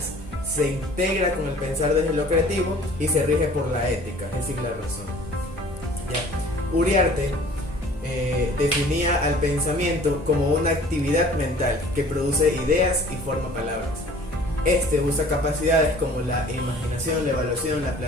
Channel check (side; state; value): both; normal; correlation 0.50